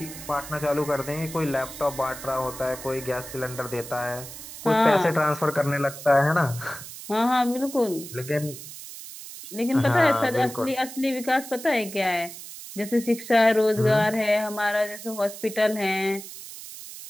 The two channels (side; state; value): right; noise; hiss, 13 dB below the sound